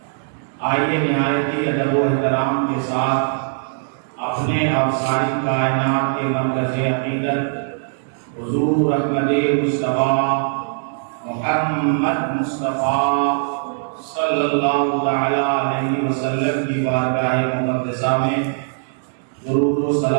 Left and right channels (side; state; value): left; silent; digital silence